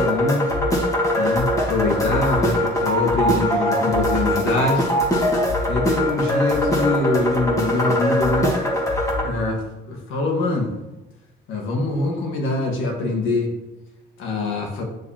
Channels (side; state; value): both; normal; correlation 0.48